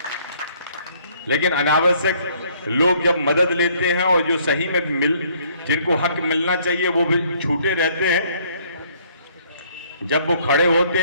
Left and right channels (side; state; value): both; inverted; correlation -0.63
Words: लेकिन अनावश्यक लोग जब मदद लेते हैं और जो सही में जिनको हक मिलना चाहिए वो भी छूटे रहते हैं, जब वो खड़े होते